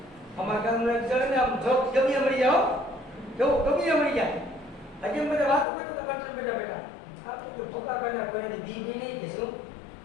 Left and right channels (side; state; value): right; drops out; at 5.7 s